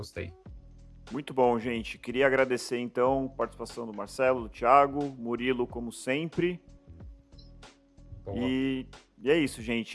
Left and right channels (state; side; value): identical; both; correlation 1.00